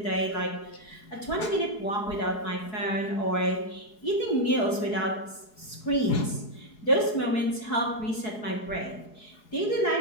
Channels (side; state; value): right; late; 4.7 ms